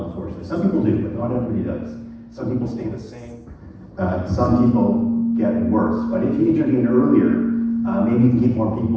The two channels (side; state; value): both; identical; correlation 1.00